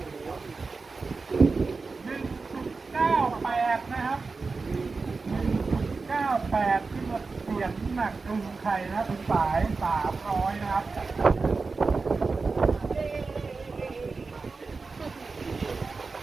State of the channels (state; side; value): quieter; left; 4.2 dB